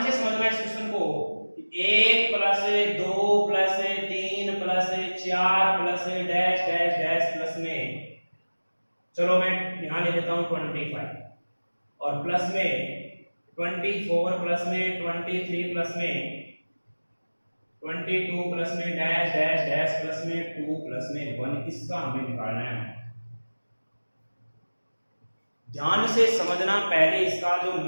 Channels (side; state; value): both; inverted; correlation -1.00